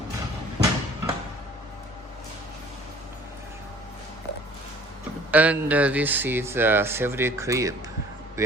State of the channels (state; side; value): normal; both; correlation 0.50